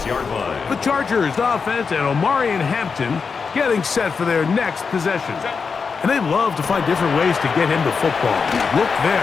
The Chargers offense and Omarion Hampton getting set for their next possession. And they love to find different ways to get him the football. Look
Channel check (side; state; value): right; quieter; 5.3 dB